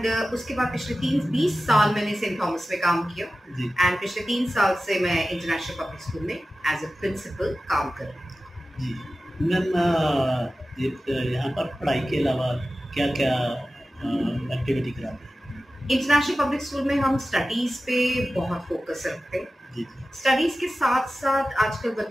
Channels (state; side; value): normal; both; correlation 0.95